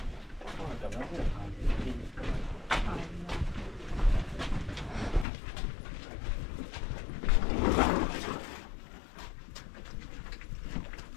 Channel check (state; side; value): drops out; right; at 5.2 s